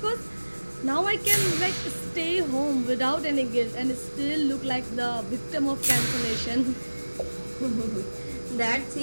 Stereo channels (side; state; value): both; inverted; correlation -1.00